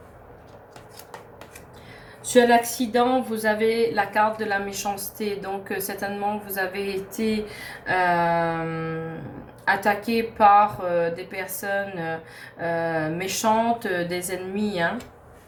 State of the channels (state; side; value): identical; both; correlation 1.00